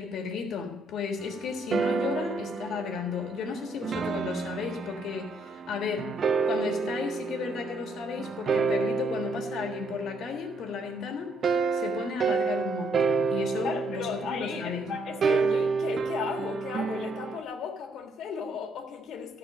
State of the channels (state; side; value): normal; both; correlation 0.70